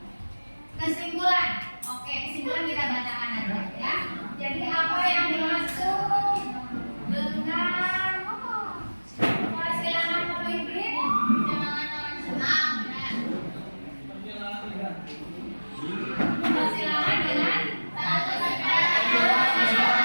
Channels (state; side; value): inverted; both; correlation -1.00